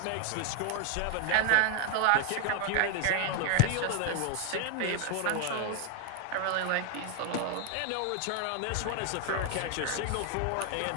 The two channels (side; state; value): both; different; correlation 0.00